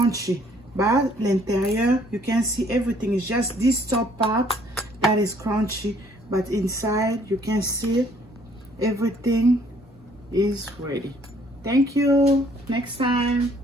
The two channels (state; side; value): normal; both; correlation 0.62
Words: But l'intérieur, you can see everything is just this top part that is crunchy. But inside, you can see everything is ready. Thank you. Next time.